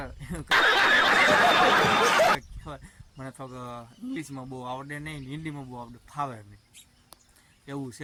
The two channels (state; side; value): identical; both; correlation 1.00